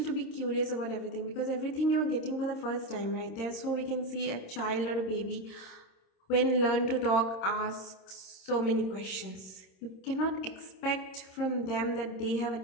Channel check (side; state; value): right; late; 26 ms